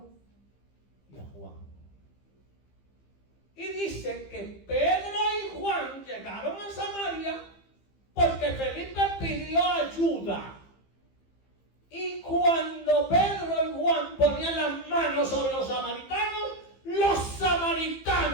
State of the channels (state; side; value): late; right; 15 ms